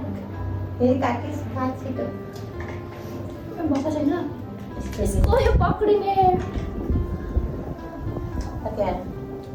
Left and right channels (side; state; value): both; identical; correlation 1.00